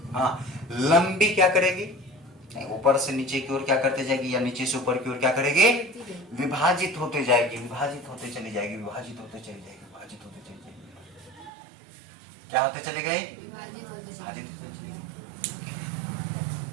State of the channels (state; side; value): drops out; left; at 11.5 s